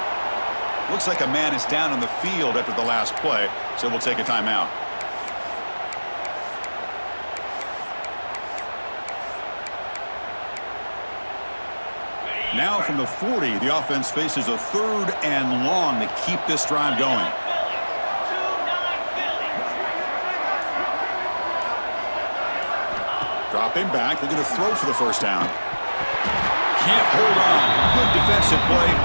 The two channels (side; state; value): both; inverted; correlation -1.00